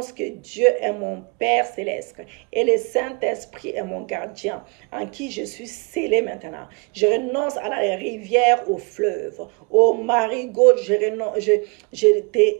que Dieu est mon Père céleste et le Saint-Esprit est mon gardien en qui je suis scellé maintenant. Je renonce à la rivière, au fleuve, au marigot. Je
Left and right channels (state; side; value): quieter; left; 32.8 dB